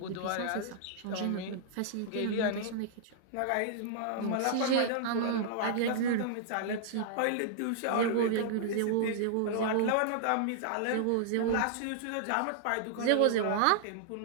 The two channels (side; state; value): both; different; correlation -0.01